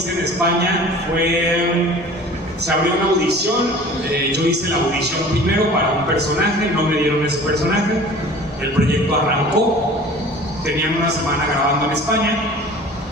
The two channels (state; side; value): normal; both; correlation 0.44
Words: en España se abrió una audición, yo hice la audición primero para un personaje, no me dieron ese personaje, el proyecto arrancó, tenían una semana grabando en España